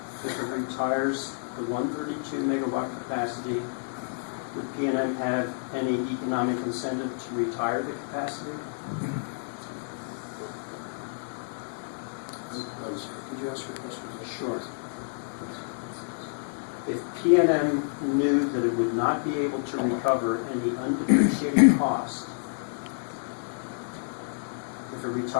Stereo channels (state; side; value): silent; right; 59 dB below the other